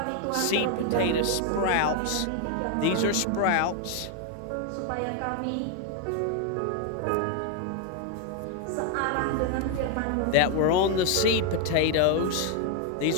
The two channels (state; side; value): different; both; correlation 0.01